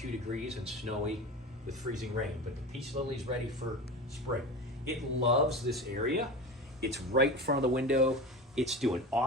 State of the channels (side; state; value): both; normal; correlation 0.30